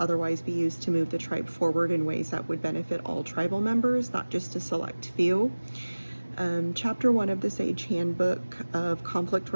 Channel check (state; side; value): inverted; both; correlation -1.00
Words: be used to move the tribe forward in ways that would benefit all tribal members, not just a select few. Chapter 1 of the Sage Handbook of Conflict